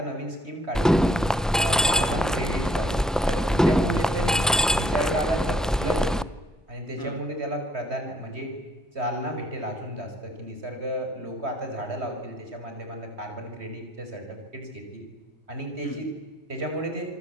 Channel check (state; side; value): normal; both; correlation 0.66